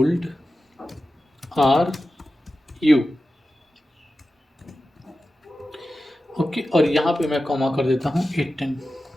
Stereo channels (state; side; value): normal; both; correlation 0.93